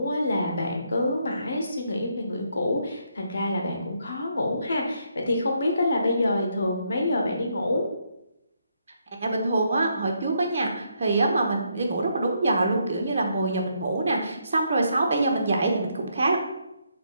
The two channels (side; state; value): both; inverted; correlation -0.75